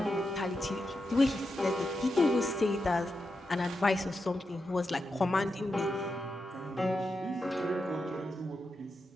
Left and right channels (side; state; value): both; normal; correlation 0.87